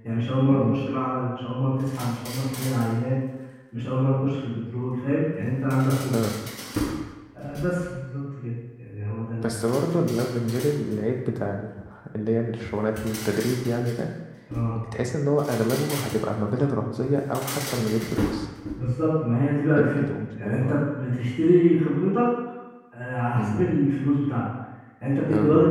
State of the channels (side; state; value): both; identical; correlation 1.00